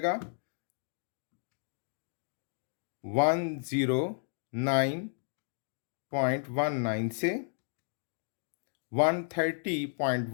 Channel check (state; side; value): silent; right; digital silence